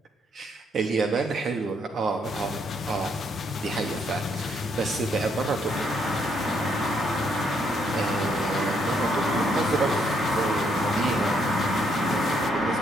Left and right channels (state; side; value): normal; both; correlation 0.72